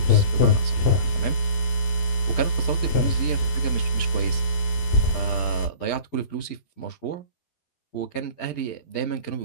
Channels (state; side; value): late; right; 12 ms